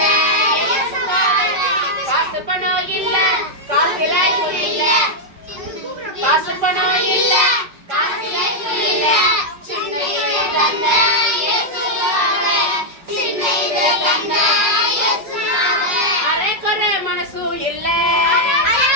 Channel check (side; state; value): left; late; 5.6 ms